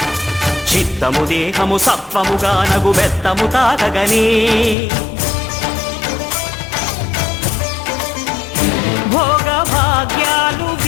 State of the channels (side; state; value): right; drops out; at 4.8 s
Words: చిత్తము దేహము సత్వముగా నగు బెత్తము తాకగనే భోగ భాగ్యాలు